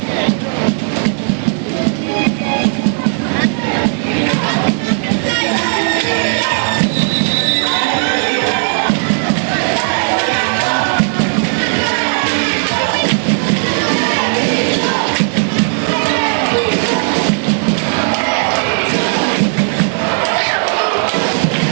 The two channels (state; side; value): silent; left; 59 dB below the other